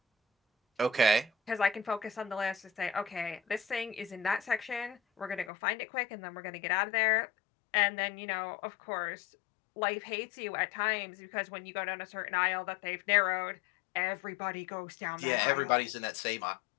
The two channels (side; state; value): right; drops out; at 5.5 s